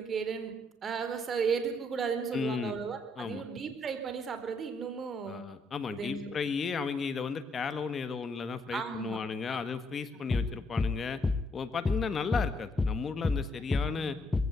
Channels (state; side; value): normal; both; correlation 0.72